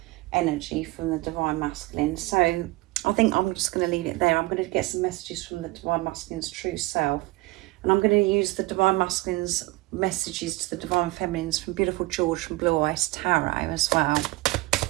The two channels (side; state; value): left; quieter; 20.8 dB